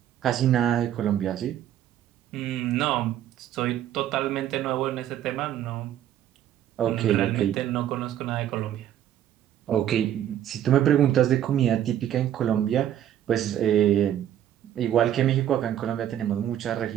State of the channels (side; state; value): left; quieter; 11.0 dB